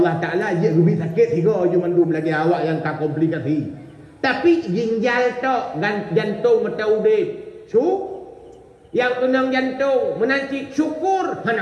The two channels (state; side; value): identical; both; correlation 1.00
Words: Allah Ta'ala dia lebih sakit tiga je mandum lagi awak yang tak komplikasi. Tapi ginjal tok jantung mata udip. Yang kenang jantung menancik syukur